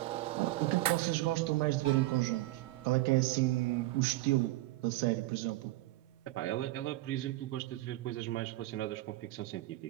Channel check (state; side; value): quieter; left; 17.9 dB